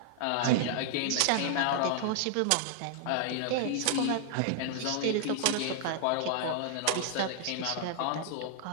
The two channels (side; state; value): both; different; correlation -0.01